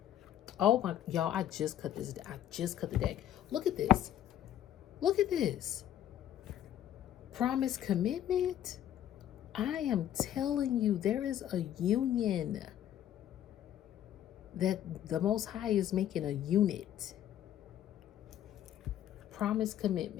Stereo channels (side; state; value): right; quieter; 11.3 dB